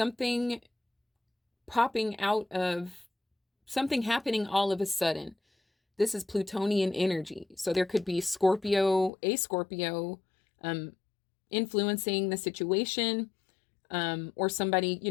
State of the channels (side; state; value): right; drops out; at 9.1 s